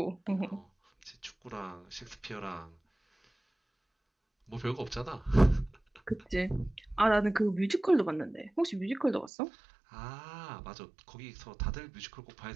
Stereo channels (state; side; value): drops out; left; at 9.3 s